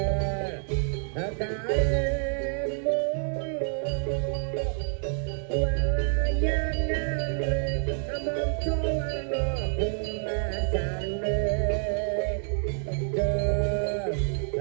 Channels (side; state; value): left; silent; digital silence